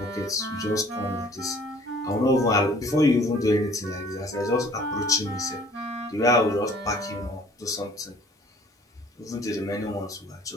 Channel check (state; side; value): normal; both; correlation 0.54